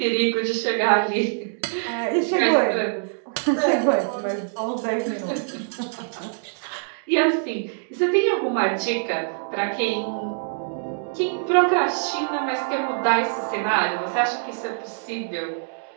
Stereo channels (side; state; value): left; silent; digital silence